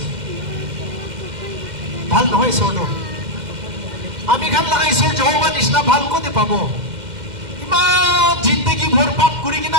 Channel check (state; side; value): late; left; 2.1 ms